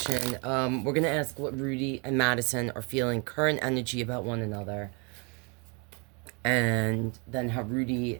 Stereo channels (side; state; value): left; quieter; 32.9 dB